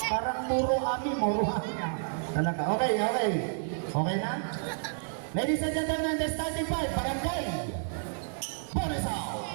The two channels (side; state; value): left; silent; digital silence